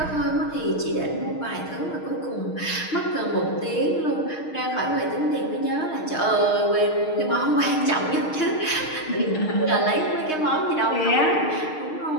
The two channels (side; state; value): right; late; 6.5 ms